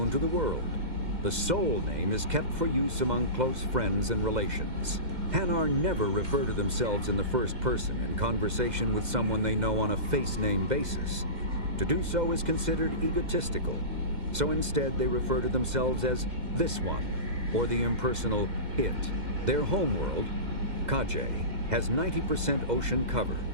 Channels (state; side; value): late; left; 2.0 ms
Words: to the world. The soul name is kept for use among close friends and relations. Hanar never refer to themselves in the first person in conversation with someone they know on a face name basis. To do so is considered egotistical, so instead they refer to themselves as this one, or the impersonal it. Their homeworld, Kajay, has 90% ocean cover